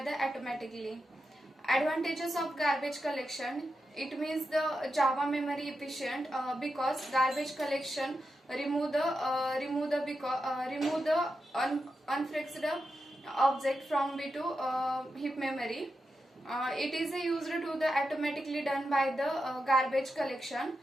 the automatically. Advantages of garbage collection: it means the Java memory efficient because garbage collection remove the unfixed object from B to heap memory. It is used to the automatically done by the garbage collection.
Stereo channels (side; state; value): both; normal; correlation 0.88